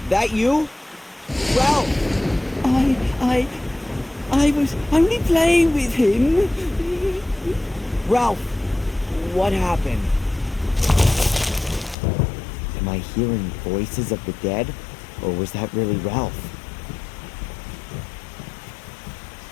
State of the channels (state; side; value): drops out; right; at 12.0 s